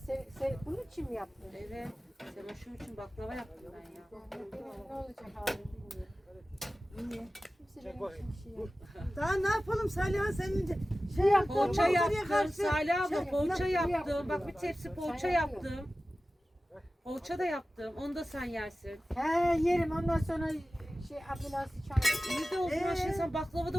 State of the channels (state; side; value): normal; both; correlation 0.96